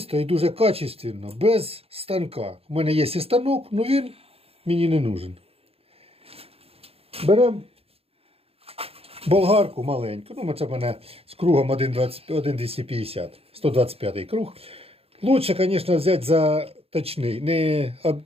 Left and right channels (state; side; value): late; left; 0.28 ms